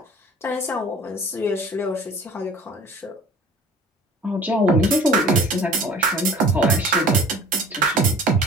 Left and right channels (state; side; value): normal; both; correlation 0.46